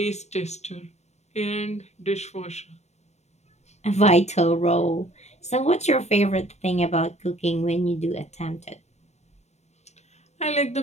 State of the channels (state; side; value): late; right; 0.32 ms